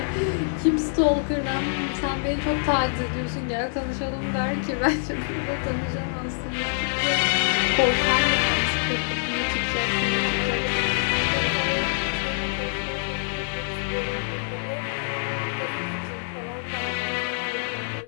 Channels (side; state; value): right; silent; digital silence